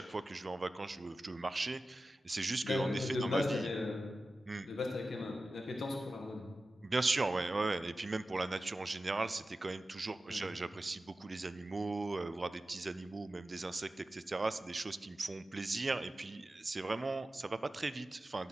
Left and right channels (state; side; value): normal; both; correlation 0.94